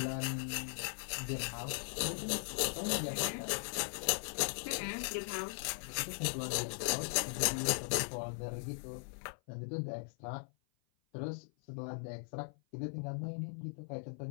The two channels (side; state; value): right; silent; 52 dB below the other